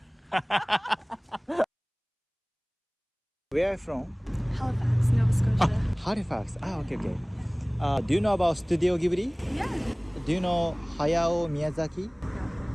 Where are you from? Halifax, Nova Scotia. Halifax. Okay. Do you know about Studio Ghibli? Yeah. Do you know Hayao Miyazaki?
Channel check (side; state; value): both; identical; correlation 1.00